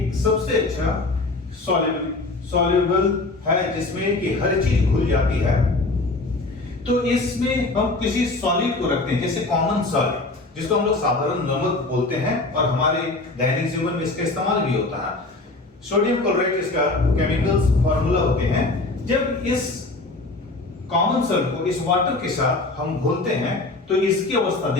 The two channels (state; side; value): quieter; right; 3.2 dB